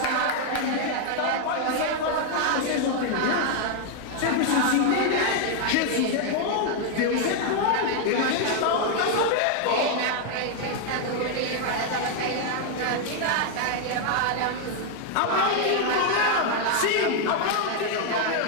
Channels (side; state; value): both; different; correlation 0.00